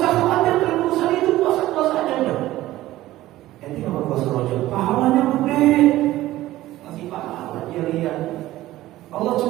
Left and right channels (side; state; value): left; quieter; 15.7 dB